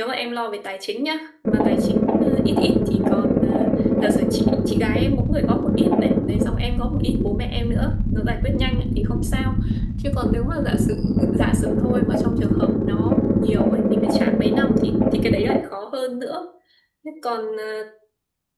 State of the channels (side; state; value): both; identical; correlation 1.00